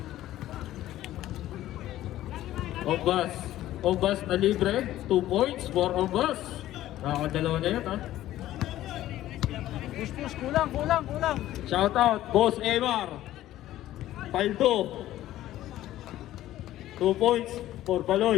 Ombas na libre, 2 points for Ombas. Nakakadalawa na yan, ha? Push, kulang. Shout out, Boss Emar. Paldo. 2 points for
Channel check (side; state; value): right; quieter; 14.1 dB